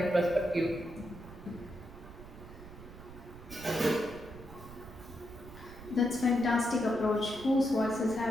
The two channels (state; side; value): noise; right; rumble, 16 dB below the sound